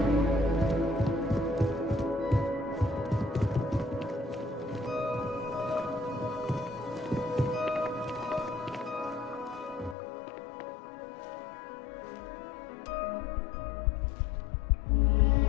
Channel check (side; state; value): right; drops out; at 10.0 s